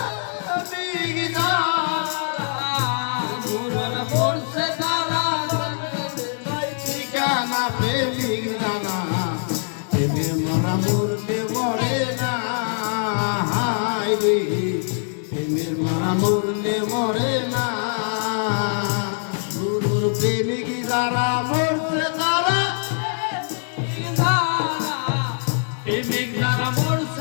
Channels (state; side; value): silent; right; digital silence